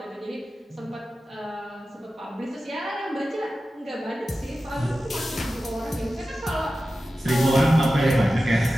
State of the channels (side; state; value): both; normal; correlation 0.94